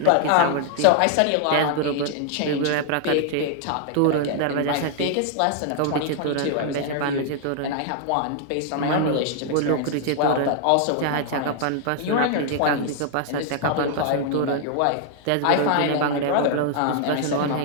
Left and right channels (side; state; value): both; different; correlation -0.01